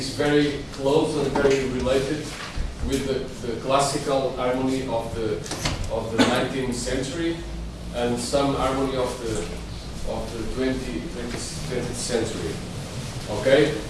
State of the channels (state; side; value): identical; both; correlation 1.00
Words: very close and very related with the classical harmony of the 19th century and some harmony of the 20th century. Okay,